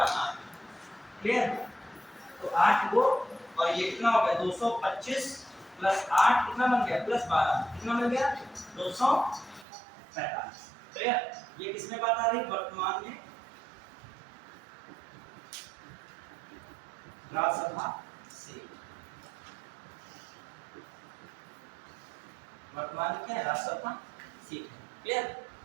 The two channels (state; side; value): drops out; left; at 9.7 s